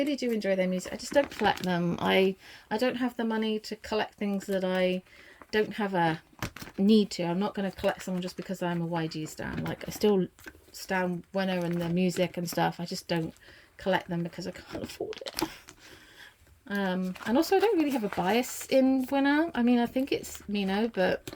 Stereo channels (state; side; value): identical; both; correlation 1.00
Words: do enjoy their music. I just don't collect them. I don't have the money to collect things that I don't have a need to. I'm not going to collect someone just because I'm a YG stan. Like, I still stan Winner and their music and stuff. I just don't collect them because I can't afford it. And also I don't really have a bias in Winner. I mean, I think it's Mino, but